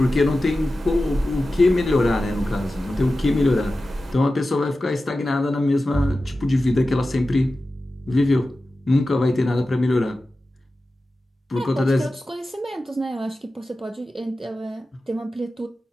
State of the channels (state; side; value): normal; both; correlation 0.94